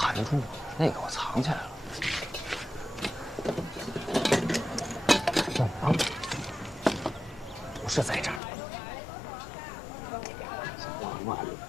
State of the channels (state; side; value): drops out; right; at 8.4 s